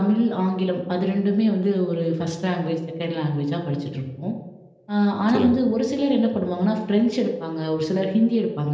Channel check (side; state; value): both; identical; correlation 1.00